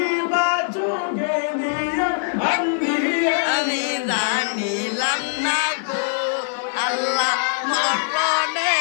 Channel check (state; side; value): silent; right; digital silence